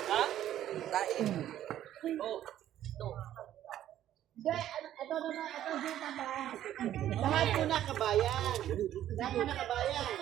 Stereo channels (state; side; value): quieter; left; 12.0 dB